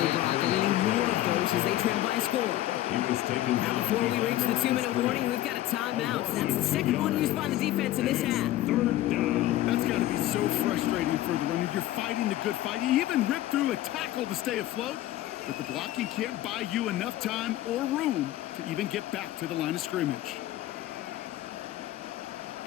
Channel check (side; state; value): right; quieter; 14.6 dB